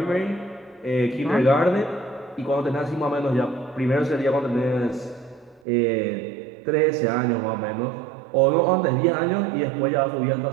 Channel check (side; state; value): left; drops out; at 5.6 s